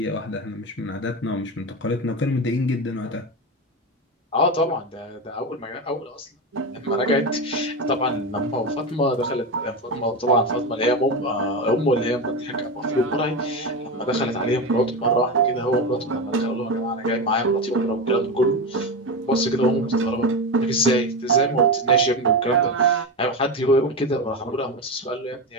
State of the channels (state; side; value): normal; both; correlation 0.18